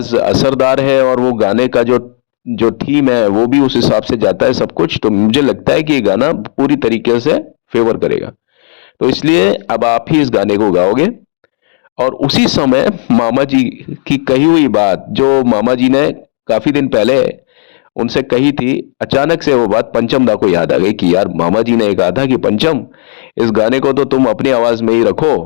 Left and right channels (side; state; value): right; silent; 71 dB below the other